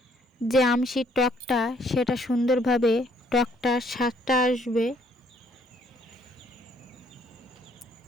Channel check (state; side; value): normal; both; correlation 0.65